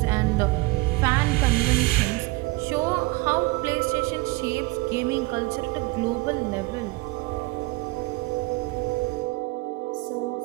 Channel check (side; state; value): left; quieter; 22.9 dB